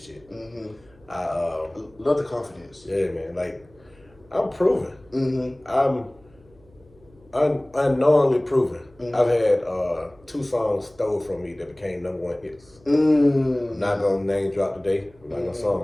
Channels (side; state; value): right; noise; hum, 28 dB below the sound